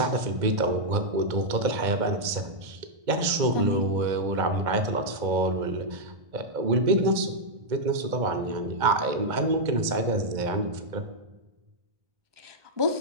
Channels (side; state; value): left; late; 2.2 ms